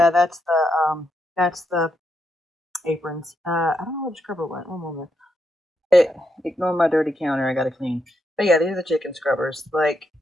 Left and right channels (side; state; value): both; normal; correlation 0.81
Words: that's the aprons. I don't know where the scrubber went. One moment. Ignore my dirty counter. I gotta clean. But yeah, these are the chicken scrubbers. Like